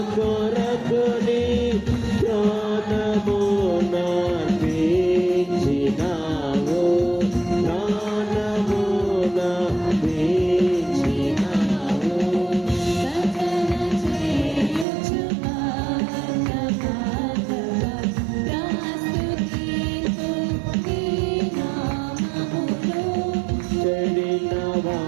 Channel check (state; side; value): drops out; left; at 14.9 s